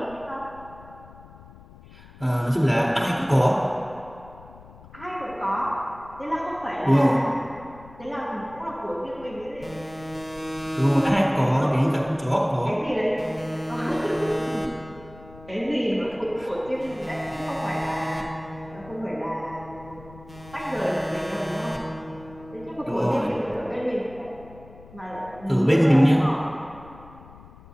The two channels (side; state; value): left; noise; rumble, 20 dB below the sound